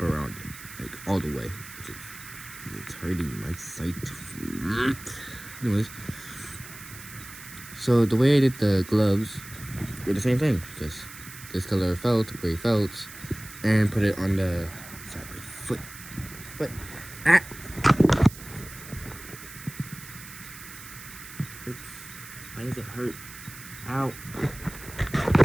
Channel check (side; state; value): right; noise; hiss, 15 dB below the sound